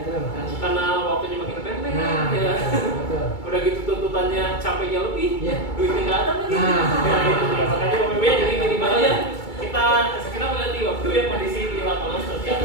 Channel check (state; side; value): late; right; 2.3 ms